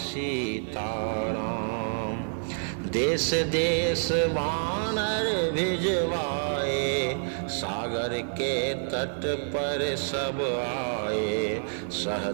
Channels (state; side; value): silent; left; digital silence